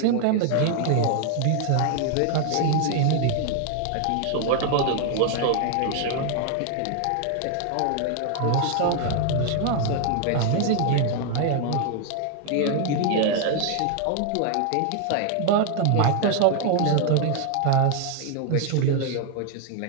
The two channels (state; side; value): different; both; correlation 0.00